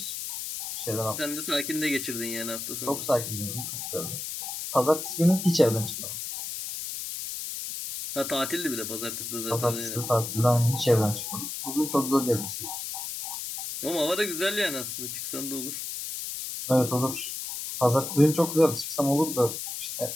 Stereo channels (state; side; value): noise; left; hiss, 6 dB below the sound